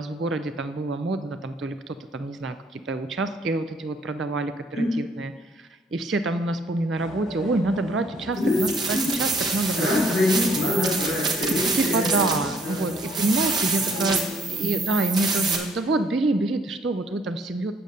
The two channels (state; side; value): normal; both; correlation 0.63